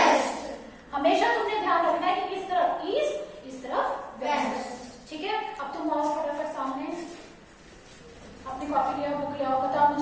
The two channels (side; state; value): both; identical; correlation 1.00